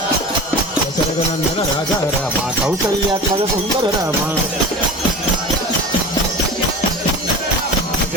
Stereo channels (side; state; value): both; normal; correlation 0.34